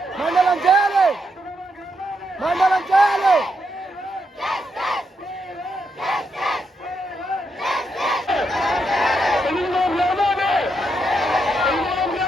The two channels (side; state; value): both; normal; correlation 0.80